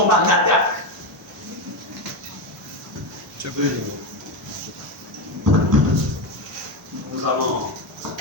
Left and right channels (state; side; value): normal; both; correlation 0.12